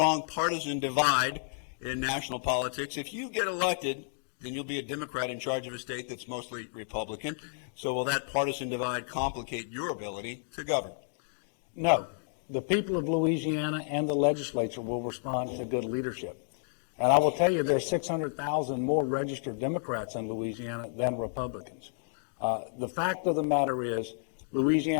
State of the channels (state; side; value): silent; right; digital silence